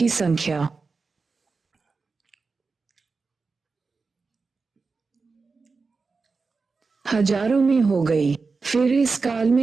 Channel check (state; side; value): quieter; left; 4.4 dB